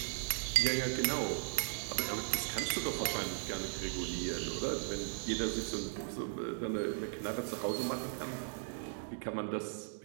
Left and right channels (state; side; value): silent; left; digital silence